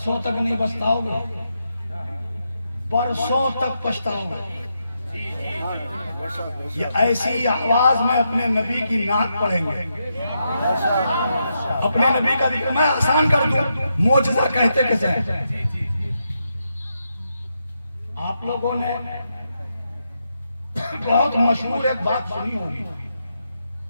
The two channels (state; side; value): inverted; both; correlation -0.83